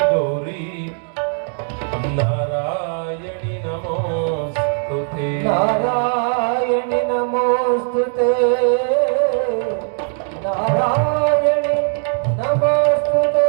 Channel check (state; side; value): silent; left; 57 dB below the other